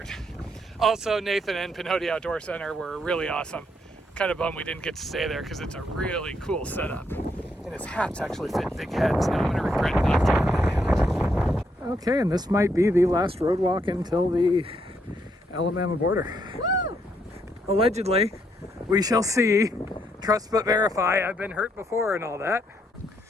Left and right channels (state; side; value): normal; both; correlation 0.75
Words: Also, Nathan and Pinhoti Outdoors Center were really awesome. Kind of bummed we didn't get to stay there because it's a really cool setup. And his hats actually fit big heads. Now I'm gonna regret not getting my hat. Okay, and this might be the last road walk until the Alabama border. Woo! Allegedly, we shall see. Trust but verify. I've been hurt before and all that.